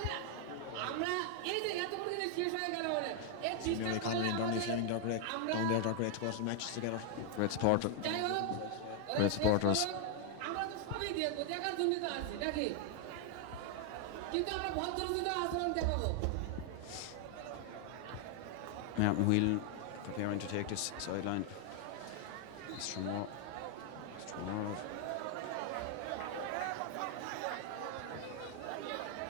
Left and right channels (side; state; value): both; different; correlation 0.00